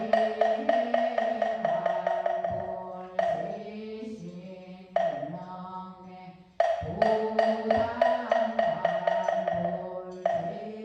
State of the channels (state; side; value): identical; both; correlation 1.00